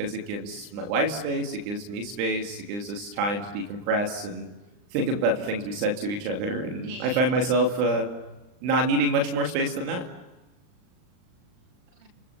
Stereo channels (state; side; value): late; left; 39 ms